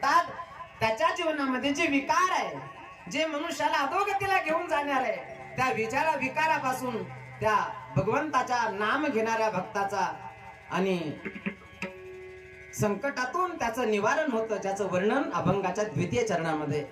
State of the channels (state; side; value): identical; both; correlation 1.00